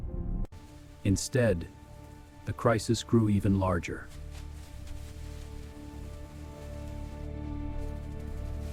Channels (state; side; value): identical; both; correlation 1.00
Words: Instead, the crisis grew even larger.